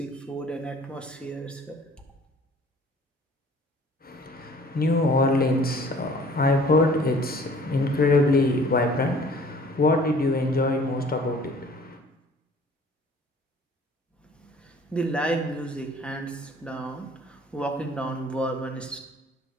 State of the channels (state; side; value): normal; both; correlation 0.52